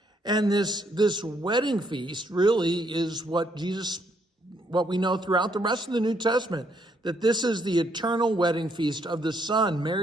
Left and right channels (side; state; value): both; normal; correlation 0.72